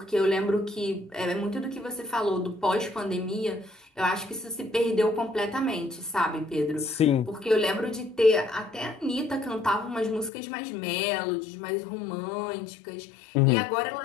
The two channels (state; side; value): drops out; right; at 10.3 s